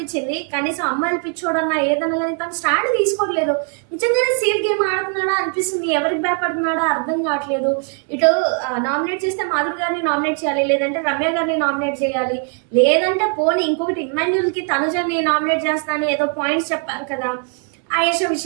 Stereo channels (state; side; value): quieter; left; 37.9 dB